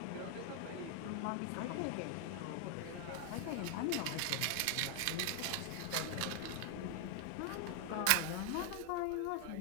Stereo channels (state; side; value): different; both; correlation 0.00